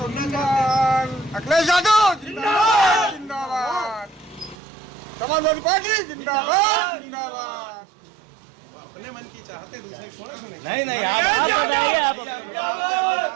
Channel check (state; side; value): drops out; left; at 4.5 s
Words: अखिलेश यादव जिंदाबाद, जिंदाबाद, समाजवादी पार्टी जिंदाबाद, जिंदाबाद। अपने मन की चाहते दूसरे थोड़े सुनेंगे। नहीं